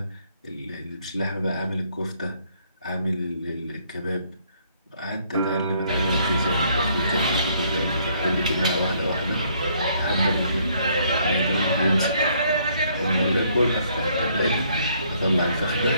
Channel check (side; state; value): both; inverted; correlation -0.67